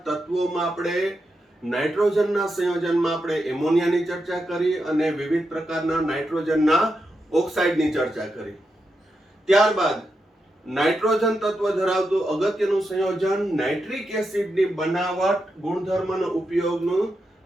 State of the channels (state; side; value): normal; both; correlation 0.86